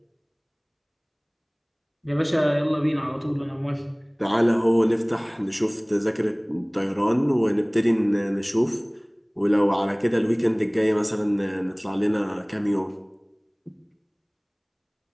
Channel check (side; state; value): both; identical; correlation 1.00